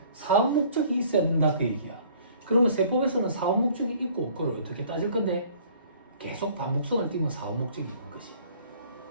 사업 목적이 있어야 된다 그 얘기야. 그러면 세법에서는 사업 목적이 있고 그걸 어떻게 따질 건데 계속 반복성을 띄면 사업 목적이 있는 거지.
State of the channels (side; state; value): both; inverted; correlation -0.55